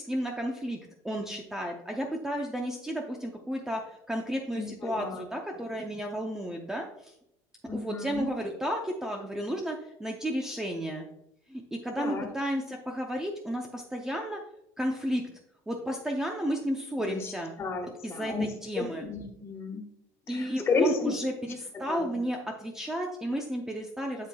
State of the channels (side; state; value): both; normal; correlation 0.73